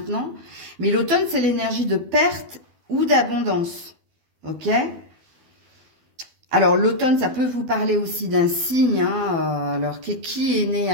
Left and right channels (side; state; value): left; late; 12 ms